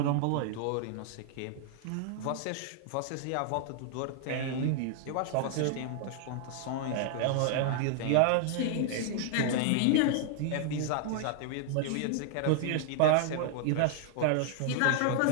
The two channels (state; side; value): different; both; correlation 0.00